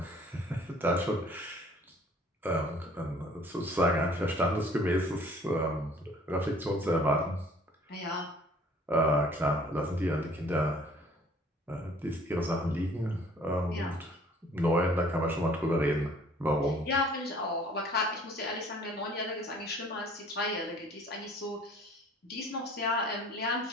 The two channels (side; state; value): both; normal; correlation 0.54